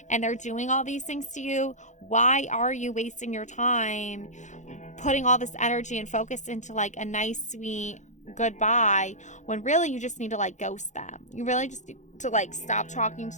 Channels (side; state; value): right; late; 0.35 ms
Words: and they're doing all these things to you, why are you wasting your time putting all this energy and focus into like a nice, sweet goodbye, when really you just need to like ghost them? You really just need to like stop talking